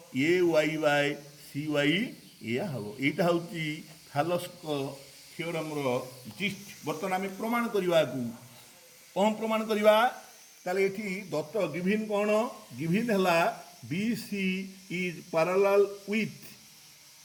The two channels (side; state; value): both; identical; correlation 1.00